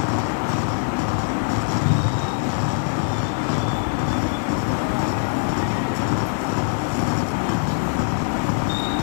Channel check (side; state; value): right; silent; digital silence